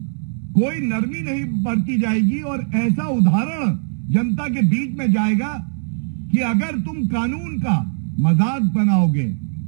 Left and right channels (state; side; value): silent; left; digital silence